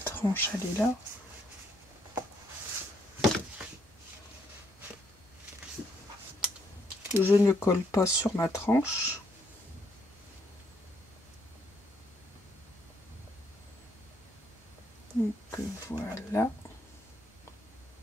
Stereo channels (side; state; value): both; normal; correlation 0.72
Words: elle est là. Je ne colle pas sur ma tranche. Donc voilà.